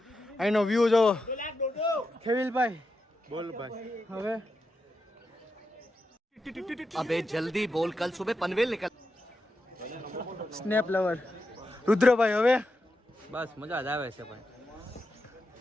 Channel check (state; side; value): normal; both; correlation 0.87